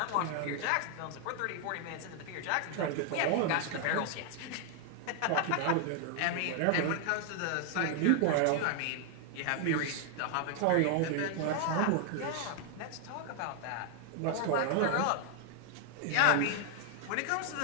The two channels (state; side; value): different; both; correlation 0.00